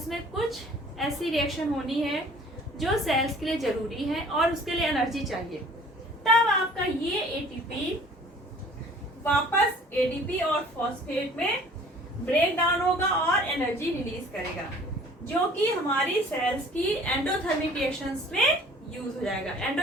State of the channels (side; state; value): both; normal; correlation 0.51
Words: में कुछ ऐसी रिएक्शन होनी है जो सेल्स के लिए जरूरी है और उसके लिए एनर्जी चाहिए, तब आपका ये एटीपी वापस एडीपी और फॉस्फेट में ब्रेक डाउन होगा और एनर्जी रिलीज करेगा, जो कि हमारी सेल्स की एंडोथर्मिक रिएक्शंस में यूज हो जाएगा।